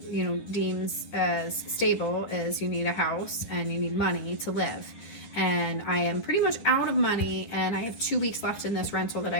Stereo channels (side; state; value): right; late; 9.8 ms